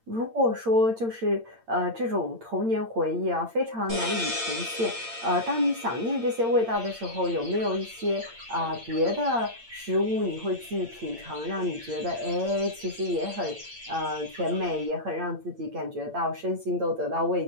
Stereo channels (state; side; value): late; left; 8.8 ms